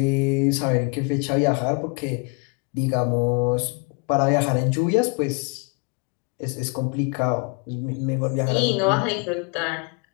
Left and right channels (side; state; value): right; quieter; 33.4 dB